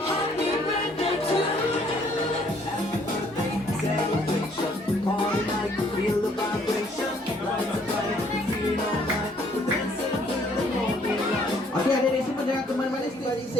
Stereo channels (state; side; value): normal; both; correlation 0.63